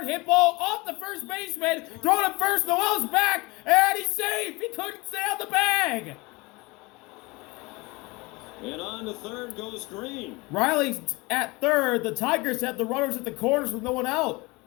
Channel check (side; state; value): right; quieter; 24.4 dB